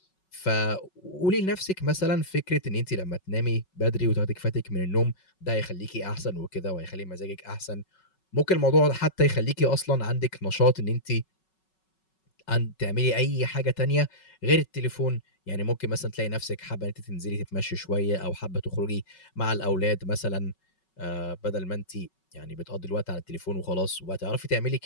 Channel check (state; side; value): late; right; 5.4 ms